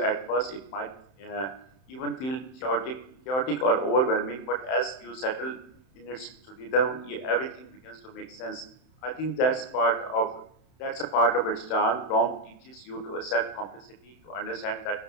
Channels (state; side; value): late; right; 31 ms